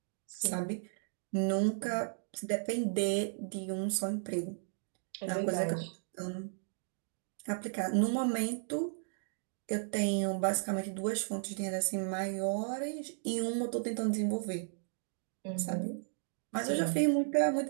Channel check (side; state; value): left; silent; digital silence